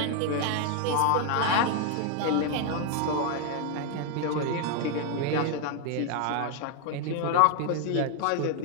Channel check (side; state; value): both; different; correlation 0.01